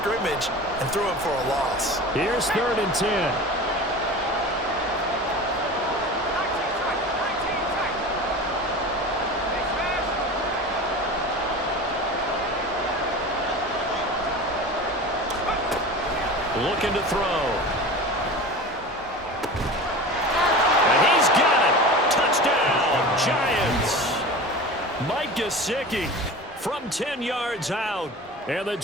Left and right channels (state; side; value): normal; both; correlation 0.34